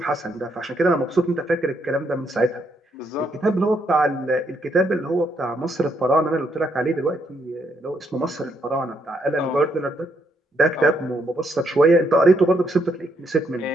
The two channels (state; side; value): normal; both; correlation 0.75